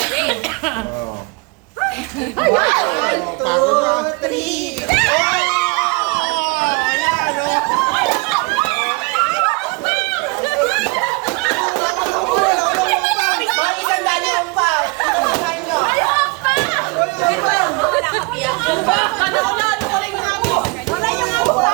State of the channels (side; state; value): left; quieter; 28.8 dB